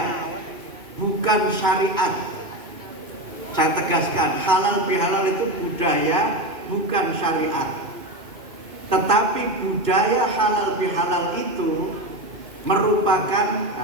bukan syariat. Saya tegaskan, halal bihalal itu budaya, bukan syariat. Tetapi budaya halal bihalal itu merupakan,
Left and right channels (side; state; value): left; late; 2.6 ms